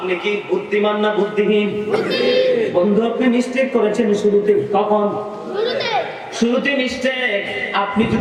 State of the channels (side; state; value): both; identical; correlation 1.00